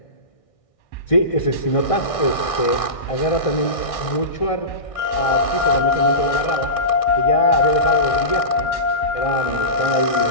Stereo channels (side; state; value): right; late; 1.6 ms